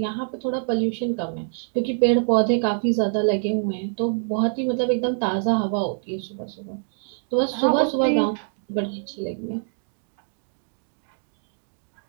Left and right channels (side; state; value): left; silent; digital silence